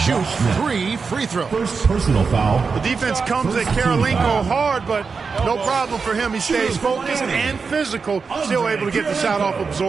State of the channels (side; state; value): left; quieter; 5.1 dB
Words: 3 free throws. First personal foul. The defense comes at Kirilenko hard, but no problem for him. He stays focused and physical, still able to get the shot off,